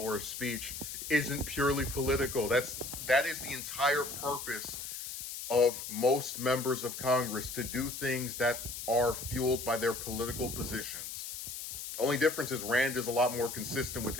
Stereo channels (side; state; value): left; noise; hiss, 7 dB below the sound